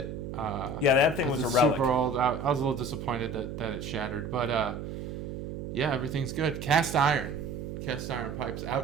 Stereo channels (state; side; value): noise; right; hum, 7 dB below the sound